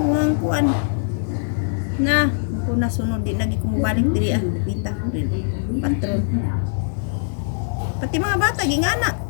kuan. Na, ko nasunod di lagi ko mobalik diri pita patron. Pati mga bata gingana.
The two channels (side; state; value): right; silent; 63 dB below the other